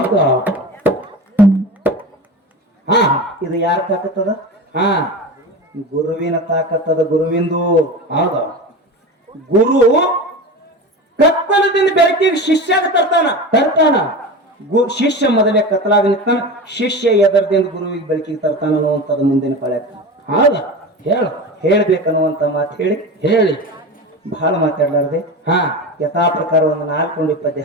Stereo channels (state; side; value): normal; both; correlation 0.28